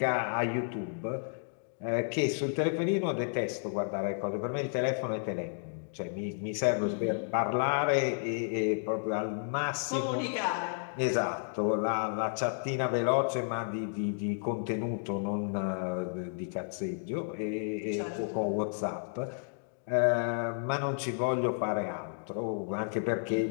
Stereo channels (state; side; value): silent; right; digital silence